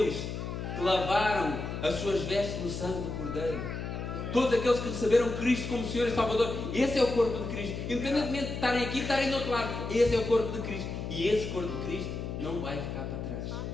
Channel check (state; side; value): noise; left; hum, 5 dB below the sound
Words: que lavaram as suas vestes no sangue do Cordeiro, todos aqueles que receberam Cristo como Senhor e Salvador, esse é o corpo de Cristo. Independentemente de estarem aqui, estarem do outro lado, esse é o corpo de Cristo. E esse corpo de Cristo não vai ficar para trás.